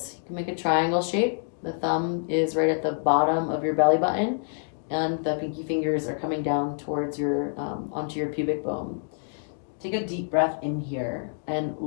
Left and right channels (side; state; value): right; silent; digital silence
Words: you can make a triangle shape. The thumb is right at the bottom of your belly button, and the pinky fingers are coming down towards your, onto your pubic bone. Take a deep breath in here and